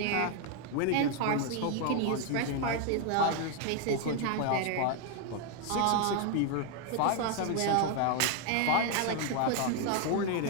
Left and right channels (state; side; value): different; both; correlation 0.01